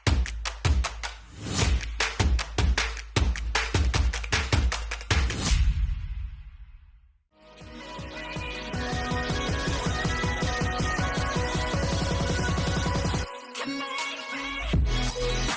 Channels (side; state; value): both; identical; correlation 1.00